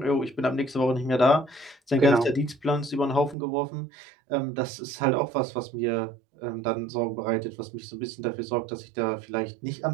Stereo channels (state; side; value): drops out; left; at 3.4 s